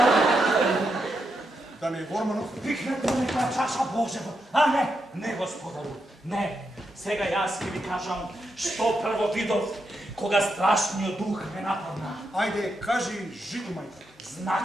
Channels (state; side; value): normal; both; correlation 0.83